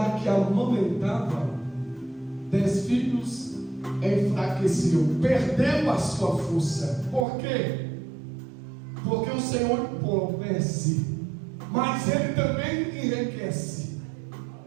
que amamentava 10 filhos enfraqueceu, perdeu a sua força. Por quê? Porque o Senhor empobrece, mas Ele também enriquece,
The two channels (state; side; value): drops out; left; at 7.2 s